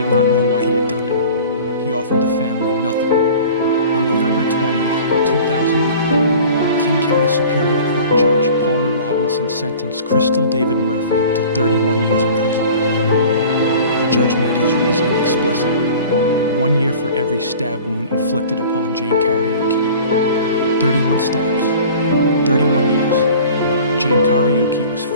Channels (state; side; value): inverted; both; correlation -0.43